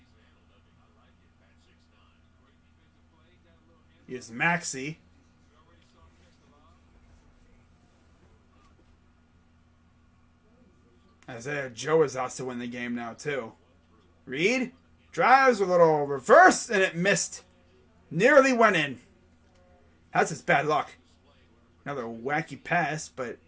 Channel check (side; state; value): both; identical; correlation 1.00